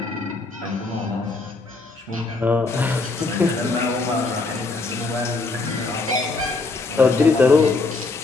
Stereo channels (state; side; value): quieter; right; 3.6 dB